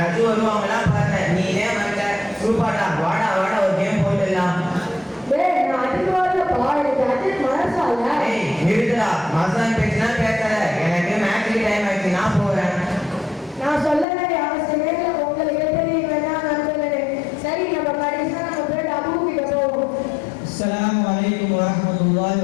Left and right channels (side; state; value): right; drops out; at 14.1 s